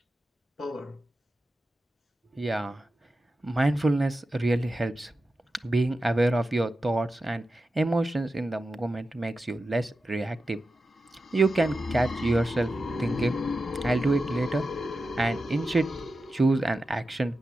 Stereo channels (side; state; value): both; normal; correlation 0.91